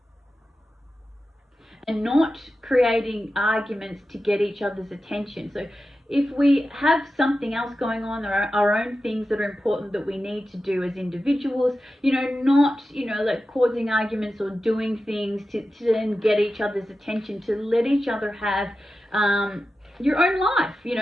not creating arguments to get each other's attention. So if we have something else going on, our own things that are important that we need to do as individuals, you know, not, you know, like causing arguments or doing things to then get each other's attention, to let each other have your own life, you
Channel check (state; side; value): normal; both; correlation 0.92